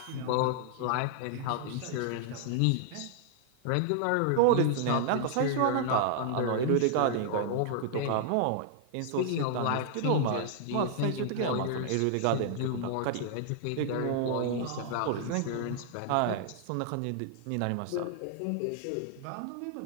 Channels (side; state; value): both; different; correlation -0.01